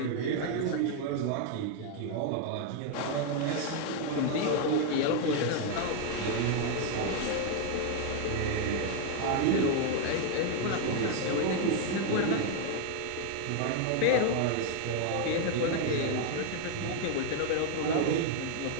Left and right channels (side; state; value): both; different; correlation 0.01